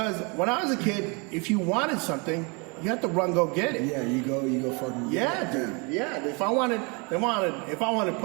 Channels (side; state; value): left; quieter; 31.6 dB